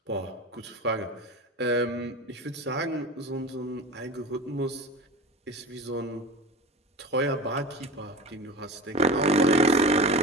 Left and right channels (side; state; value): both; normal; correlation 0.31